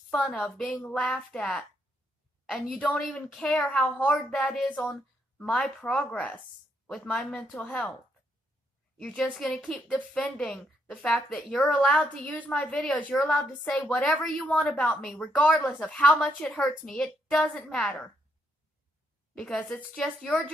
of, being laughed at. And you don't even care how hard that is on my progress with my mental health. You're just going to keep defending the fact that you're allowed to use my videos. You're allowed to say whatever you want about me, regardless of how much it hurts me. It doesn't matter. Because it's just your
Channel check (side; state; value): both; normal; correlation 0.75